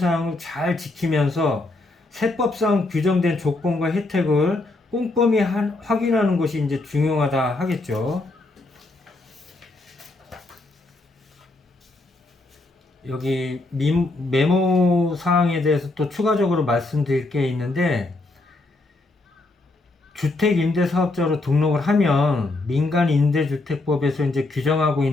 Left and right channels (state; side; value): quieter; right; 3.0 dB